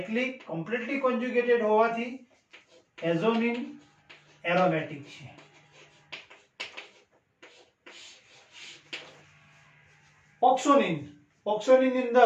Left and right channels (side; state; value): both; identical; correlation 1.00